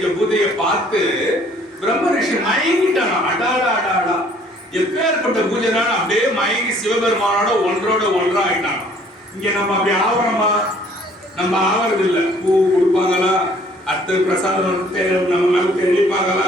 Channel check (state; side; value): normal; both; correlation 0.58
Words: பூஜையை பார்த்து பிரம்ம ரிஷி மயங்கிட்டானா. அடாடா அடாடா, எப்பேற்பட்ட பூஜைனால அப்படியே மயங்கி சிவபெருமானோட ஒன்றோட ஒன்றா ஆயிட்டான். இங்க நம்ம அப்படி ஆவரமா, நம்ம ஆவறது இல்ல. பூ கொடுப்பாங்களா, அடுத்த பிரசாதம் நம்ம மேல தெளிப்பாங்களா,